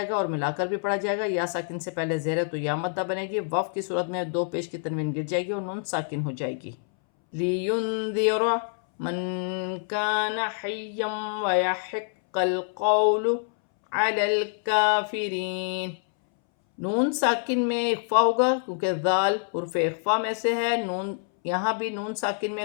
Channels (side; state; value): right; silent; 61 dB below the other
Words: گا اور ملا کر بھی پڑھا جائے گا۔ یا ساکن سے پہلے زیر ہے تو یا مدہ بنے گی، وف کی صورت میں دو پیش کی تنوین گر جائے گی اور نون ساکن ہو جائے گی۔ لِيُنذِرَ مَن كَانَ حَيًّا وَيَحِقَّ الْقَوْلُ عَلَى الْكَافِرِينَ۔ نون ساکن میں اخفا ہوگا کیونکہ ذال حرف اخفا میں سے ہے، نون یہاں بھی نون ساکن میں